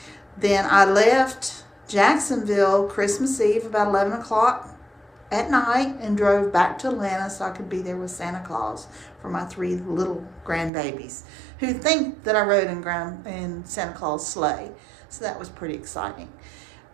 Then I left Jacksonville Christmas Eve about 11 o'clock at night and drove back to Atlanta so I could be there with Santa Claus for my three little grandbabies who think that I rode in Santa Claus sleigh. So that was pretty exciting.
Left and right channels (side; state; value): left; drops out; at 10.7 s